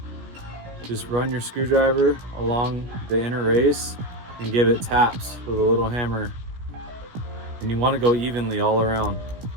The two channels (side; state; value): left; late; 17 ms